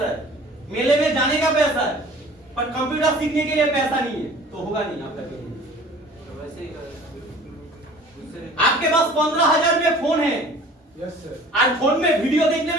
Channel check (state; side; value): normal; both; correlation 0.47